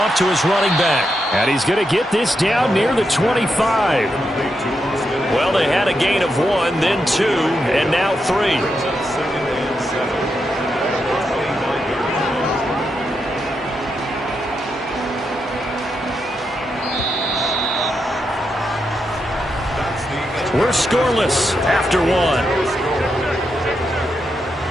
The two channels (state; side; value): normal; both; correlation 0.84